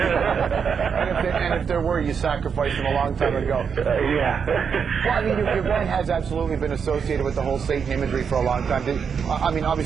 and if there were, you sacrificed them a long time ago. Yeah. Well, I mean, your band has absolutely been associated with the whole Satan imagery for a long time. I mean,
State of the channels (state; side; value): quieter; left; 6.6 dB